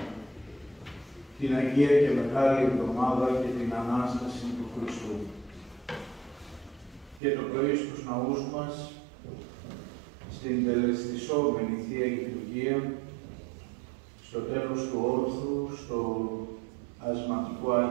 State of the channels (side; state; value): left; drops out; at 7.2 s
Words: την Αγία και Μεγάλη Εβδομάδα και την Ανάσταση του Χριστού. Και το πρωί στους ναούς μας, στην τελεστισόμενη Θεία Λειτουργία, στο τέλος του όρθρου, στο ασματικό